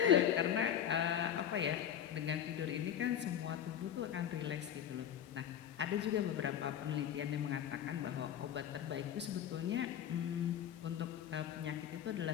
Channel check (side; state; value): right; quieter; 9.6 dB